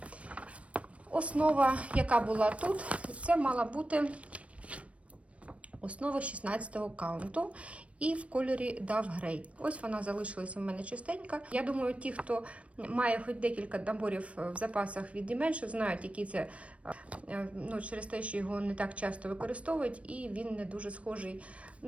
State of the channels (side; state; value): left; late; 0.063 ms